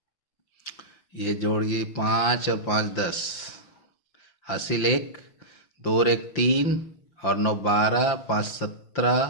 ये जोड़िए 5 और 5 10, हासिल 1, 2 और 1 3 और 9 12, 5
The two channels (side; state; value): right; late; 5.8 ms